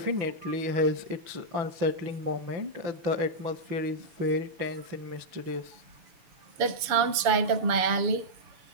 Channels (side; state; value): left; late; 7.0 ms